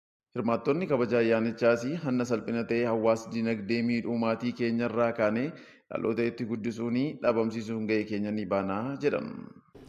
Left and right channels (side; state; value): both; identical; correlation 1.00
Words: Hirmaattonni kabaja ayyaanichaas hanna salphina ta'ee hawaas dinagdee miidhuu maatii keenyarraa kaanee dhaloota itti guddisuun dhabamsiisuun gahee keenya ni baanaa jedhan.